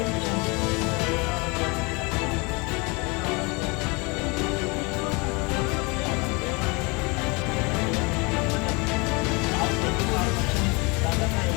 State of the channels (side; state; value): right; quieter; 28.2 dB